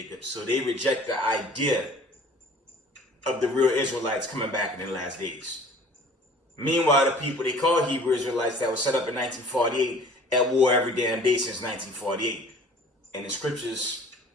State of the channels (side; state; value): both; normal; correlation 0.48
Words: So they reject the idea of the real Israelites coming back in the last days. Meanwhile, the people they call Hebrew Israelites that were set up in 1948 at war every damn day since 1948. And the scriptures,